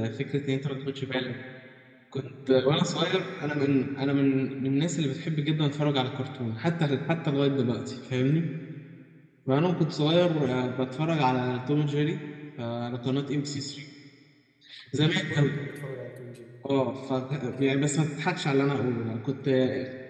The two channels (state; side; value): identical; both; correlation 1.00